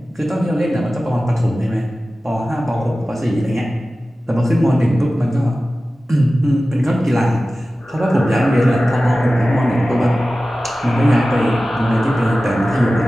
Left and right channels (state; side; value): normal; both; correlation 0.95